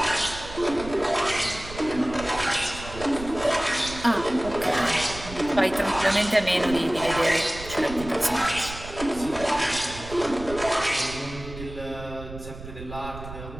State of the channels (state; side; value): noise; right; rumble, 13 dB below the sound